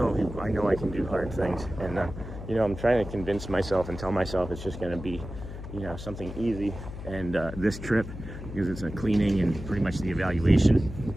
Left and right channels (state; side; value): noise; left; hum, 10 dB below the sound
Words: can do hard things, and you know, I'm trying to convince myself and tell myself it's just going to be, you know, something easy. And this trip, because it's a cleaning and pretty much the evaluation,